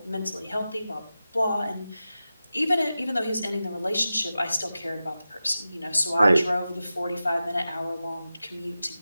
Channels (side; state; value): both; inverted; correlation -0.93